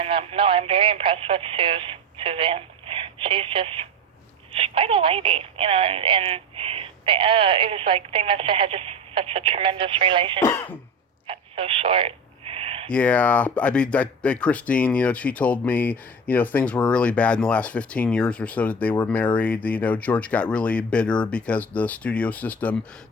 no, I'm very impressed with Suzanne. She's quite a lady, and it was like they must have had just such a tremendous relationship. Got so short. Yeah, I mean, Christine, she told me, things were really bad in the last 15 years or so that they were married. George got really bitter because the studio system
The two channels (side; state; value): both; normal; correlation 0.28